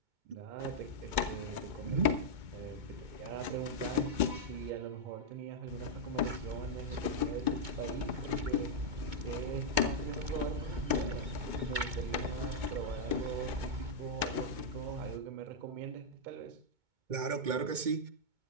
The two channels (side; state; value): left; late; 2.2 ms